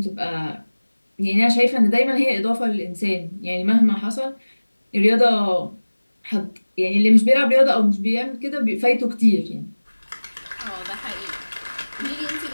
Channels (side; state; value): both; inverted; correlation -1.00